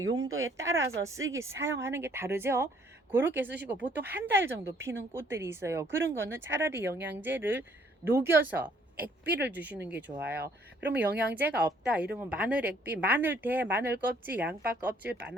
용도에 따라서 사용하는 게 다르죠. 그렇게 쓰시고, 보통 한 달 정도 피는 꽃들이 있어요. 그런 거는 차라리 영양제를 녹여서 액비를 주시는 게 좋아요. 그러면 영양제가 없다 이러면 마늘 액비, 마늘 대, 마늘 껍질, 양파 껍질,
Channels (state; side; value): normal; both; correlation 0.63